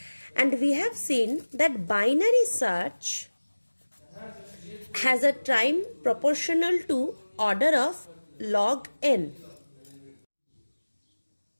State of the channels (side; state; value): both; inverted; correlation -1.00